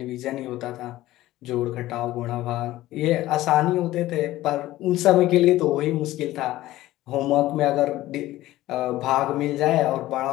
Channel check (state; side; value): quieter; right; 15.9 dB